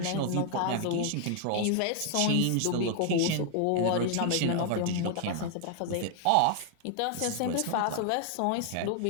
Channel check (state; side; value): different; both; correlation 0.00